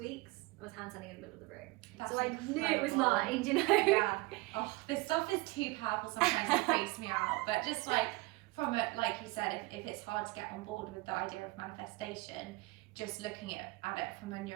I was handstanding in the middle of the room. So I knew it was mine, Yeah. Oh, this stuff is too powerful sometimes. It freaks me out. But just from it, like you said, if it's hard to get on board with the idea of manifestation, just looking at it from a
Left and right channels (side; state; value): left; quieter; 23.3 dB